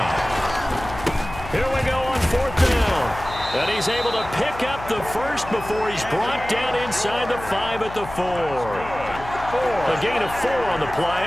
Here we go on 4th down. And he's able to pick up the first before he's brought down inside the 5 at the 4. A gain of 4 on the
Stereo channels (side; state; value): left; noise; hum, 13 dB below the sound